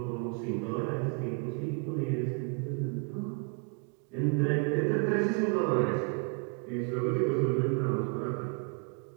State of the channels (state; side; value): quieter; left; 36.9 dB